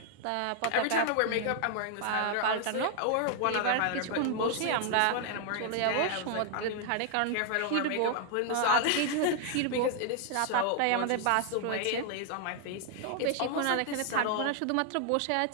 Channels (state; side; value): different; both; correlation 0.00